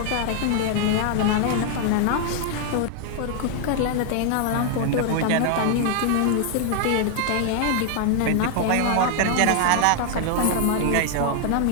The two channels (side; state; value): both; different; correlation 0.00